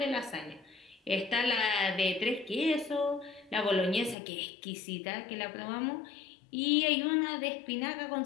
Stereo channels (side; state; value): right; drops out; at 4.2 s